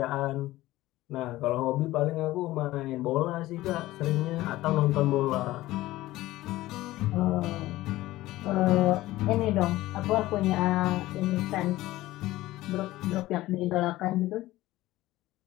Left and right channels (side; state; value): right; quieter; 16.9 dB